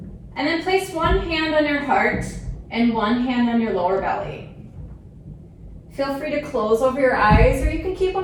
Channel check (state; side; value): identical; both; correlation 1.00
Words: And then place one hand on your heart and one hand on your lower belly. Feel free to close over your eyes or you can keep